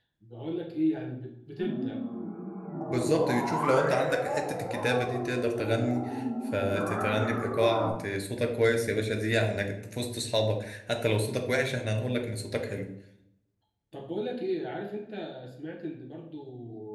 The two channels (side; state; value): both; identical; correlation 1.00